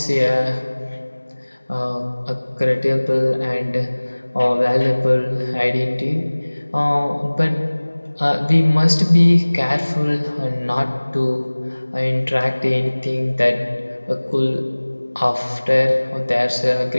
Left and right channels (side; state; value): both; inverted; correlation -1.00